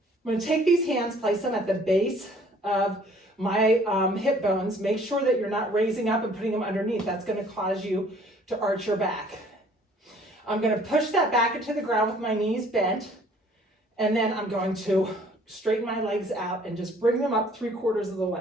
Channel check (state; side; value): normal; both; correlation 0.57